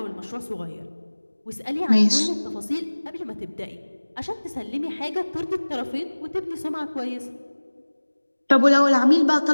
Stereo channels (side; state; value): both; inverted; correlation -1.00